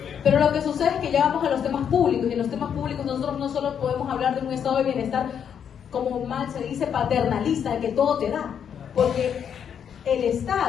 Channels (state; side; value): quieter; right; 8.1 dB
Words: Pero lo que sucede es que ya vamos a los temas públicos, y en los temas públicos nosotros no solo podemos hablar de un estado de bienestar, como mal se dice, paternalista, de que todo te da, porque el